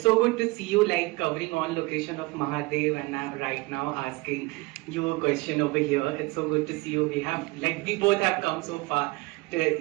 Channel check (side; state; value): left; quieter; 23.4 dB